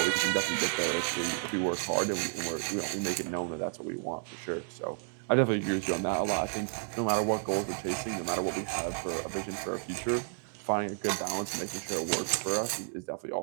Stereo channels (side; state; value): left; silent; digital silence